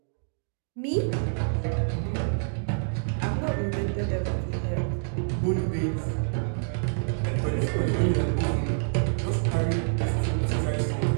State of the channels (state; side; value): silent; left; digital silence